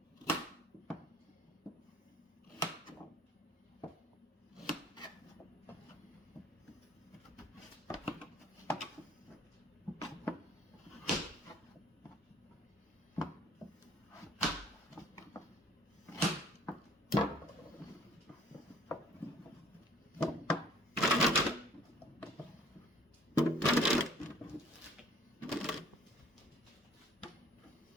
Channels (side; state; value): both; normal; correlation 0.56